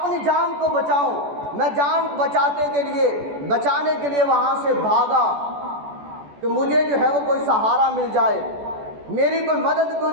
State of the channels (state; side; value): late; left; 14 ms